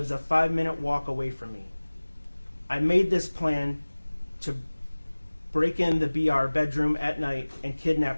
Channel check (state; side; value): inverted; both; correlation -1.00